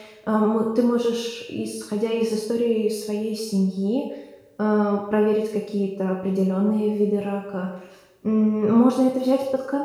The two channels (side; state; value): both; identical; correlation 1.00